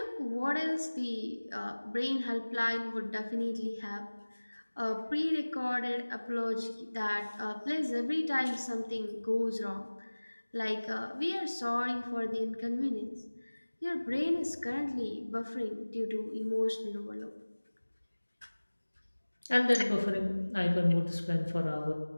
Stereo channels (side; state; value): both; inverted; correlation -1.00